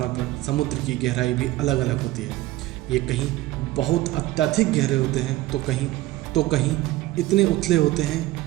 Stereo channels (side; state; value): left; quieter; 17.0 dB